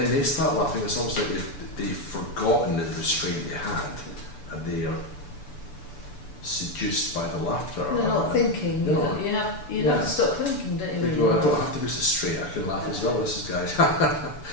they start laughing. It's almost like they've forgotten the restraint they had, and they are seduced by the laughter. They're not thinking. No. You have Yeah. to stop thinking, don't you? They when go, you I laugh? don't have to be so straight. I can laugh as well. This is guys. Yeah.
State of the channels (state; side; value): late; right; 6.9 ms